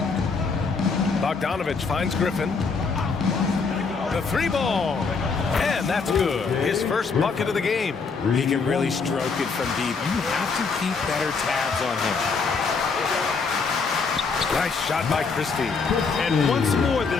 Bogdanovich finds Griffin. The three ball. And that's good. His first bucket of the game. He can really stroke it from deep. You have to keep better tabs on him. Nice shot by Christie. And once more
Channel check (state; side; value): quieter; right; 4.8 dB